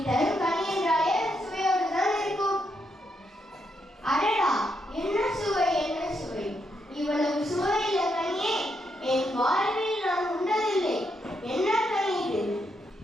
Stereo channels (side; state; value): both; normal; correlation 0.79